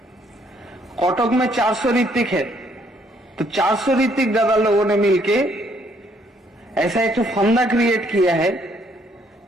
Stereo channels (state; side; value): normal; both; correlation 0.67